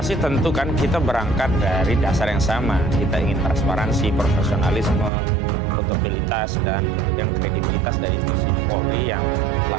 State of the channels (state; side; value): drops out; left; at 5.1 s